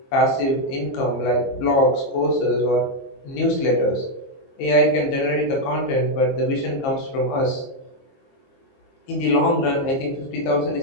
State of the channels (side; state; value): right; late; 22 ms